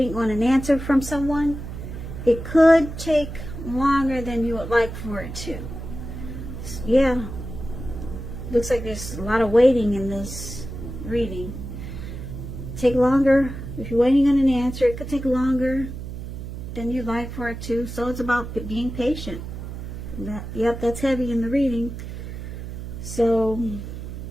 on an answer from someone, it could take longer than you would like for it to. Yeah. Looks like there's a lot of waiting in this reading. Take longer. If you're waiting on an answer, it could take longer than you'd like for it to. So it's about being patient. Yep, that's heavy in the reading. So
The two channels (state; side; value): noise; right; hum, 9 dB below the sound